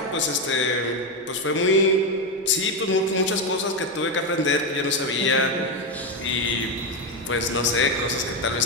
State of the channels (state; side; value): normal; both; correlation 0.09